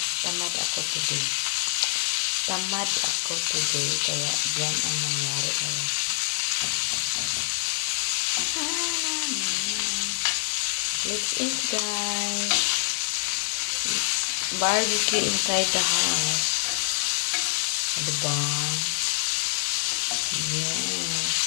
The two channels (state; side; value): silent; right; digital silence